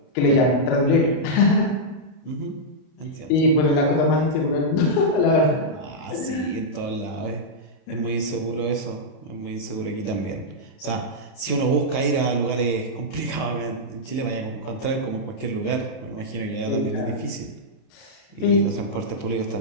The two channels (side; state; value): right; late; 30 ms